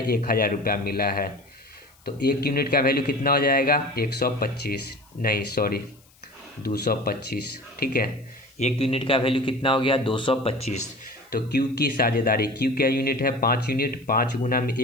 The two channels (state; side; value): noise; left; hiss, 30 dB below the sound